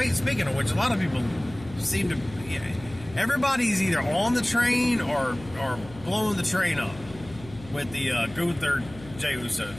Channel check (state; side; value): noise; left; hum, 18 dB below the sound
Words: of which, a lot of people seem to, everybody's either on the train or blowing the train up with the Gunther Jey Uso